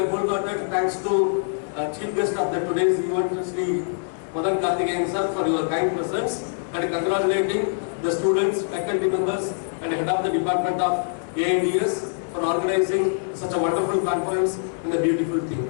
wholehearted thanks to Chief Guest of the today's event, Sri Madan Karthikeyan sir, for your kind presence, and congratulating the students, faculty members, and head of the Department of AI&DS for organizing such a wonderful conference and a beautiful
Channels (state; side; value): silent; right; 63 dB below the other